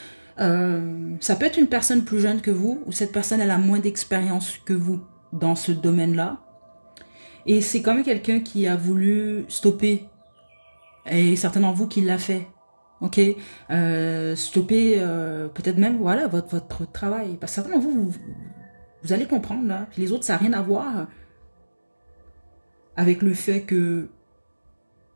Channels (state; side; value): inverted; both; correlation -1.00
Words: Ça peut être une personne plus jeune que vous, ou cette personne, elle a moins d'expérience que vous dans ce domaine-là. Et c'est quand même quelqu'un qui a voulu stopper. Et certains d'entre vous qui l'a fait. Ok, stopper peut-être même voilà votre travail. Parce que certains d'entre vous, vous allez comprendre là. Puis les autres, ça n'a rien à voir avec le fait que